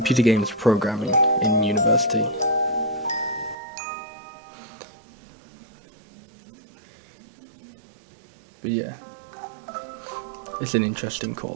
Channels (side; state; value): left; drops out; at 3.6 s